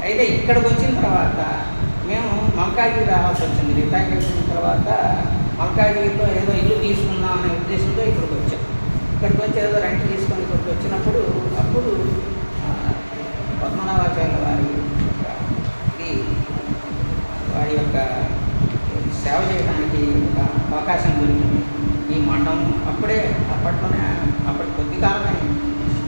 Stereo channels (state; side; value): inverted; both; correlation -1.00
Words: అయితే ఇక్కడికి వచ్చిన తర్వాత మేము మల్కాజ్గిరి రావాల్సి వచ్చింది. రిటైర్ అయిన తర్వాత మల్కాజ్గిరిలో ఏదో ఇల్లు తీసుకుందాం అనే ఉద్దేశంతో ఇక్కడికి వచ్చాం. ఇక్కడికి వచ్చి ఏదో రెంట్ తీసుకొని ఇక్కడికి వచ్చినప్పుడు అప్పుడు పద్మనాభాచార్య వారి యొక్క సేవ చేయడానికి ఒక అవకాశం దొరికింది. ఈ మఠం అప్పటి కొద్ది కాలమే